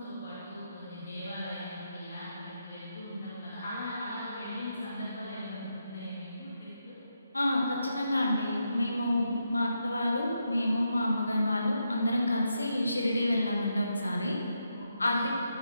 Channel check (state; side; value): inverted; both; correlation -0.83